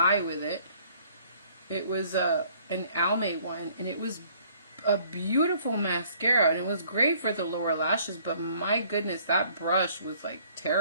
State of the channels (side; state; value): both; inverted; correlation -0.59